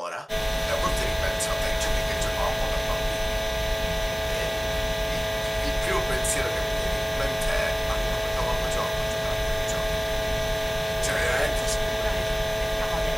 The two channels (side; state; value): both; identical; correlation 1.00